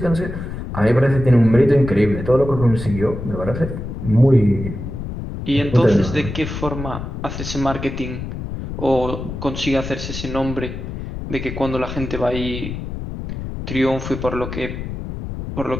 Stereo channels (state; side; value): noise; left; rumble, 7 dB below the sound